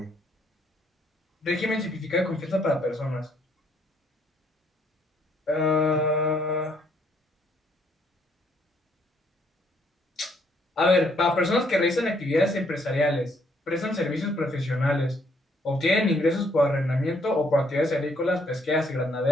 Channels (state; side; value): normal; both; correlation 0.69